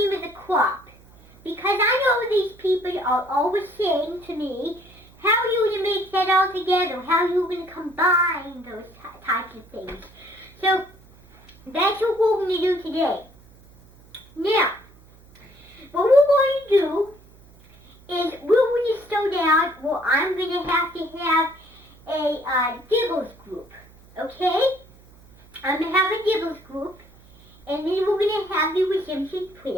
of the crop. Because I know these people are always saying to me, how are you going to make that all together? How are you going to combine those types of things? So that's what we're going to do today. Now, what we're going to do is we're going to slow down. Well, I'm going to have a Diggles group, okay? I'm going to have a Diggles group, and then we're going to have the redemption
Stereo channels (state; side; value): noise; right; hum, 26 dB below the sound